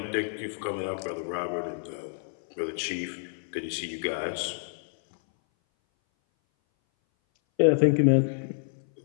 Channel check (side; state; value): right; silent; 58 dB below the other